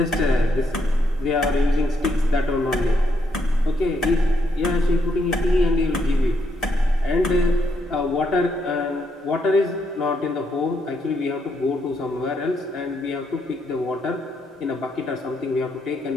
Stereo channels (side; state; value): both; normal; correlation 0.76